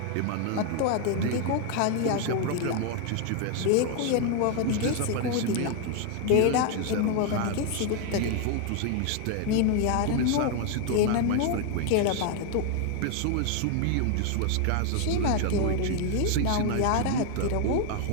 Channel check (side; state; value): both; different; correlation 0.01